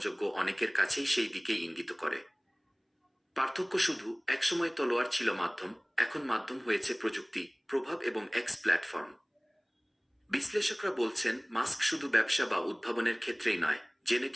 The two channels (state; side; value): identical; both; correlation 1.00